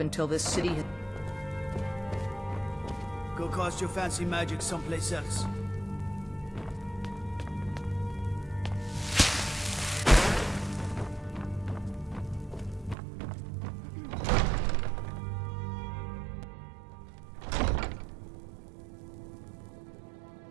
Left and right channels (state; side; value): drops out; left; at 13.0 s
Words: until this city has... Go cast your fancy magic someplace else.